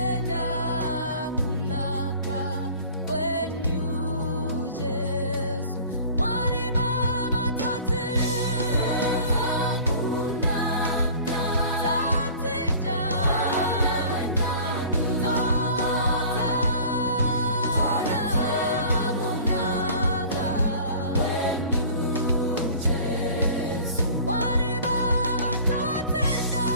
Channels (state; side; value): inverted; both; correlation -0.44